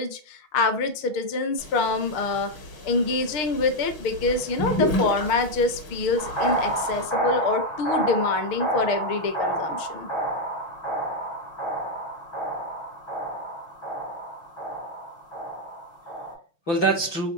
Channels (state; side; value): late; right; 6.6 ms